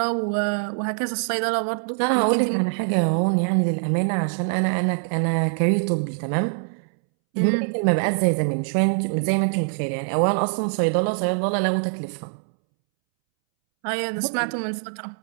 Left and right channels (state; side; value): silent; left; 63 dB below the other